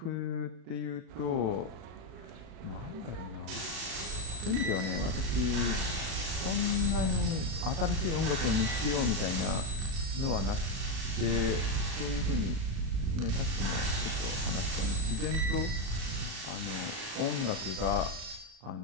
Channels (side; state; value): left; late; 37 ms